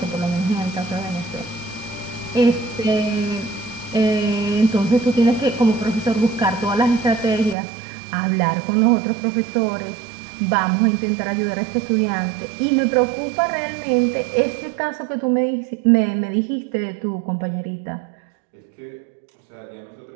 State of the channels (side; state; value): left; drops out; at 7.6 s